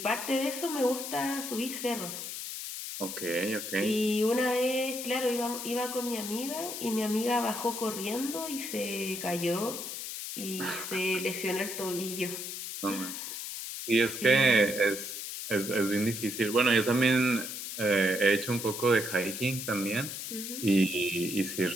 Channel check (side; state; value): left; noise; hiss, 6 dB below the sound